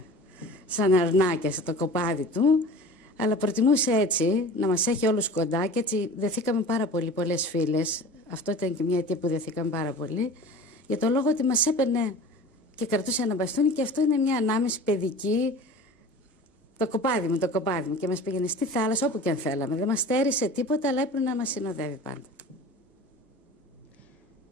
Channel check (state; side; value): normal; both; correlation 0.39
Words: σαν αρνάκια στο κοπάδι του, αλλά προτιμούσε έτσι να μας έχει όλους κοντά και έτσι δεθήκαμε πάρα πολύ, πολλές φίλες. Αυτό ήταν και μια αιτία που δεθήκαμε πάρα πολύ, για το λόγο ότι μας έπαιρνε και κρατούσε ένα μπαστούνι, και αυτό είναι μια ανάμεση παιδική. Το κοπάδι μου, και μας πήγαινε στη θάλασσα όπου και αν θέλαμε. Δεν μας στέρισε τίποτα, αλλά έπρεπε να μας συνοδεύει πάντα.